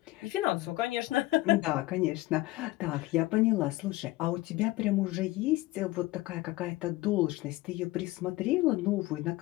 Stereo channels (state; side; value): quieter; right; 19.0 dB